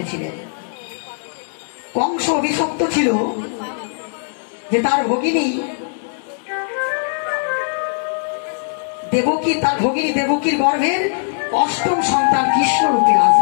কংস অভিশপ্ত ছিল যে তার ভগিনী দেবকী, তার ভগিনী দেবকীর গর্ভের অষ্টম সন্তান কৃষ্ণ রূপে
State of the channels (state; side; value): silent; right; digital silence